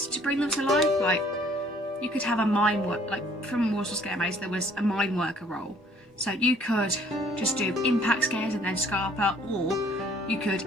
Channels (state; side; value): normal; both; correlation 0.59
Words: to bring them to life. Like, you could have a mine work, like from Warsaw Scare Maze there was a mine worker role. So you could just do impact scares and then Scarpa, or you